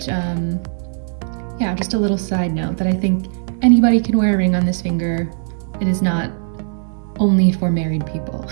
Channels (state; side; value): silent; left; 67 dB below the other